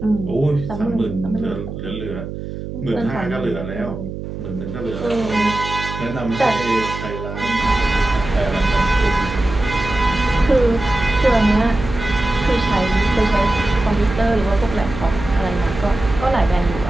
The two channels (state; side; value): noise; right; hum, 8 dB below the sound